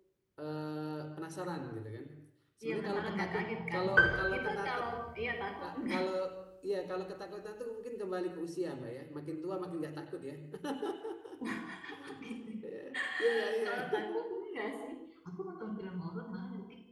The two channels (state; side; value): identical; both; correlation 1.00